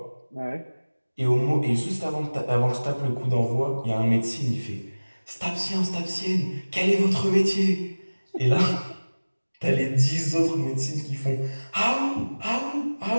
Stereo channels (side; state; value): both; inverted; correlation -1.00